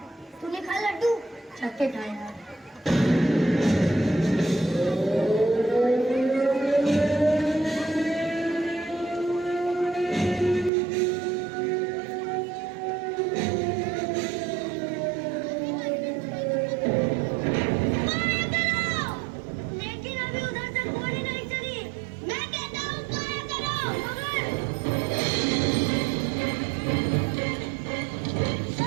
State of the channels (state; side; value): drops out; left; at 10.7 s